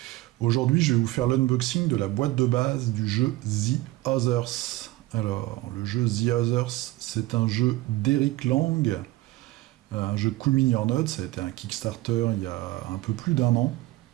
Aujourd'hui, je vais vous faire l'unboxing de la boîte de base du jeu The Others. Alors, le jeu The Others, c'est un jeu d'Eric Lang, un jeu Cool Mini or Not. Ça a été un Kickstarter il y a un peu plus d'un an.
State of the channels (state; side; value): quieter; left; 17.5 dB